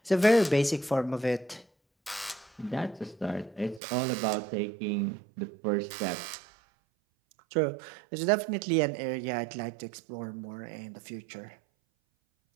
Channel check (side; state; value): left; drops out; at 3.8 s